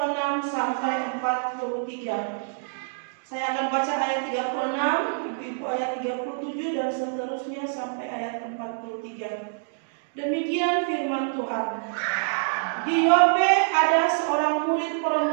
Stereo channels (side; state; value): left; silent; digital silence